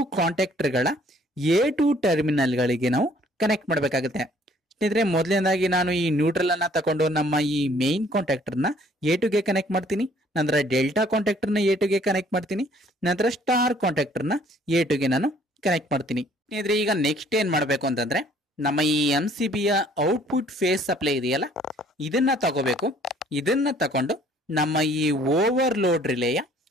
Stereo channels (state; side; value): normal; both; correlation 0.59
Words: ಕಾಂಟ್ಯಾಕ್ಟರ್ ಗಳ A2 ಟರ್ಮಿನಲ್ ಗಳಿಗೆ ನಾವು ಕನೆಕ್ಟ್ ಮಾಡಬೇಕಾಗುತ್ತೆ. ಸ್ನೇಹಿತರೆ, ಮೊದಲನೇದಾಗಿ ನಾನು ಈ ನ್ಯೂಟ್ರಲ್ ಅನ್ನ ತಗೊಂಡು ನಮ್ಮ ಈ ಮೇನ್ ಕಾಂಟ್ಯಾಕ್ಟರ್ ನ A2 ಗೆ ಕನೆಕ್ಟ್ ಮಾಡ್ತೀನಿ, ನಂತರ ಡೆಲ್ಟಾ ಕಾಂಟ್ಯಾಕ್ಟರ್ ನ A2 ಗೆ ಕನೆಕ್ಟ್ ಮಾಡ್ತೀನಿ, ನಂತರ ಸ್ಟಾರ್ ಕಾಂಟ್ಯಾಕ್ಟರ್ ನ A2 ಗೆ ನಾನು ಕನೆಕ್ಟ್ ಮಾಡ್ತೀನಿ. ಸ್ನೇಹಿತರೆ, ಈಗ ನೆಕ್ಸ್ಟ್ ಏನ್ ಮಾಡಬೇಕು ಅಂತಂದ್ರೆ ನಮ್ಮ ಈ MCB ಯ ಔಟ್ಪುಟ್ ಫೇಸ್ ಸಪ್ಲೈ ಇದೆಯಲ್ಲ, ಇದನ್ನ ತಗೋಬೇಕು. ಇದನ್ನ ತಗೊಂಡು ನಮ್ಮ ಈ ಓವರ್ಲೋಡ್ ರಿಲೇಯ